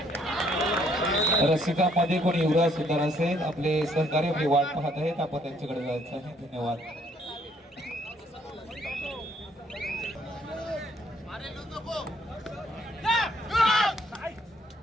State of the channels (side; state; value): both; normal; correlation 0.66